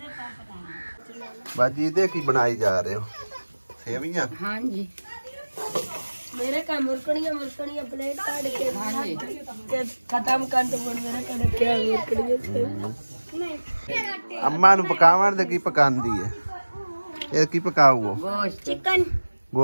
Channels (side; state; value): both; inverted; correlation -1.00